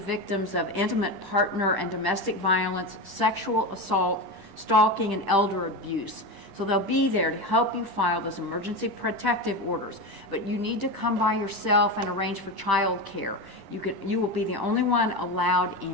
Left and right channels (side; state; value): left; late; 10 ms